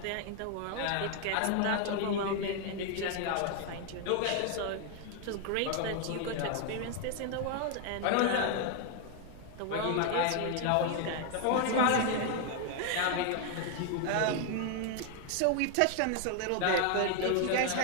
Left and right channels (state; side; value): different; both; correlation 0.00